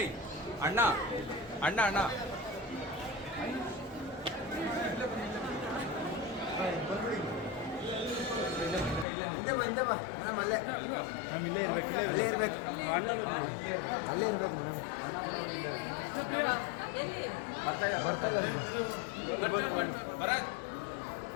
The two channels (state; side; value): drops out; right; at 9.1 s